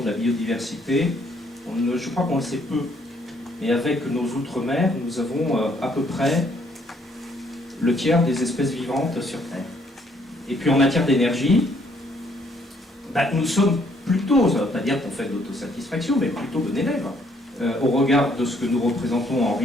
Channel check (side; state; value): both; normal; correlation 0.67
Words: de la biodiversité, je crois qu'on le sait peu. Et avec nos outre-mer, nous avons à peu près le tiers des espèces vivantes sur Terre. Et puis en matière d'énergie, nous sommes plutôt, ça ne veut pas dire qu'on fait de l'autosatisfaction, mais plutôt bon élève. Au regard de ce que nous représentons en